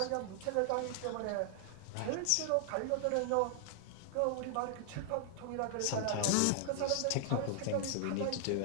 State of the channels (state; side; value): different; both; correlation 0.00